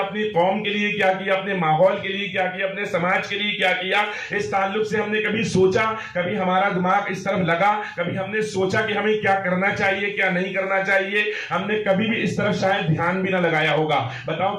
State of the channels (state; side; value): identical; both; correlation 1.00